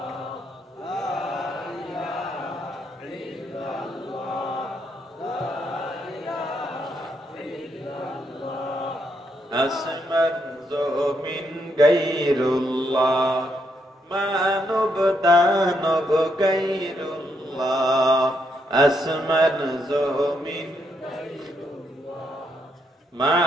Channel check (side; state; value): both; normal; correlation 0.77